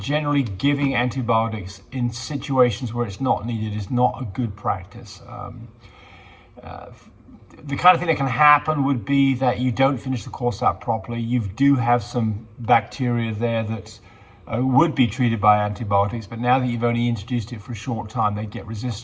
giving antibiotics in situations where it's not needed is not a good practice. The kind of thing that can happen would be that you don't finish the course out properly. You do have some bacteria there that would be treated by antibiotics, but now that you've only introduced it for a short time, they get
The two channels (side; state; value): both; identical; correlation 1.00